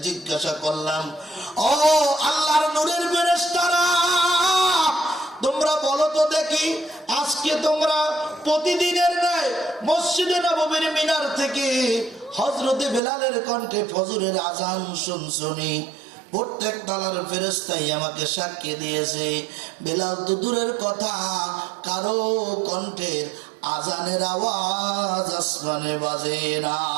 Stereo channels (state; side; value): drops out; left; at 13.0 s